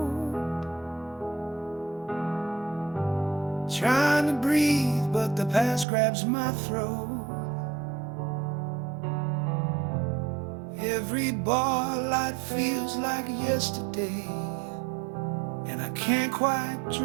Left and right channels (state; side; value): drops out; left; at 5.9 s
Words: trying to breathe, but the past grabs my throat. Every bar light feels like yesterday, and I can't quite